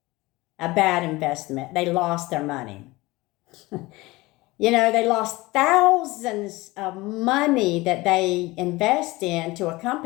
a bad investment. They lost their money. They lost thousands of money that they invest into a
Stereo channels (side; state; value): right; quieter; 21.1 dB